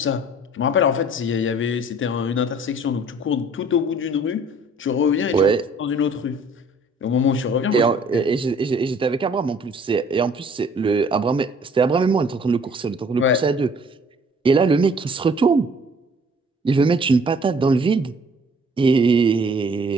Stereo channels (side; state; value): both; normal; correlation 0.55